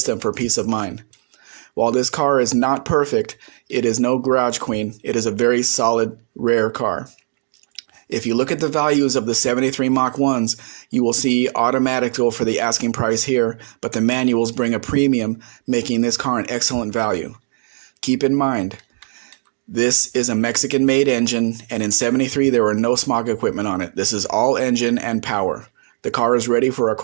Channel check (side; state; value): left; silent; digital silence